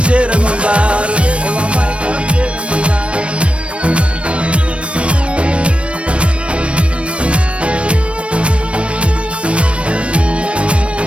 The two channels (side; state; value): left; late; 0.061 ms